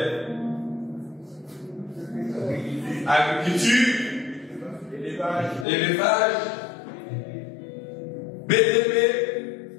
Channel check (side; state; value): right; drops out; at 5.7 s